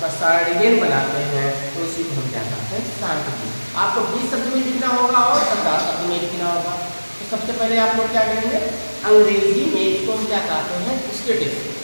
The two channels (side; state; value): both; inverted; correlation -1.00